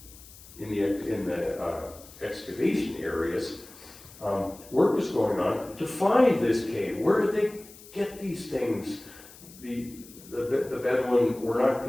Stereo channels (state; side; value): noise; left; hiss, 20 dB below the sound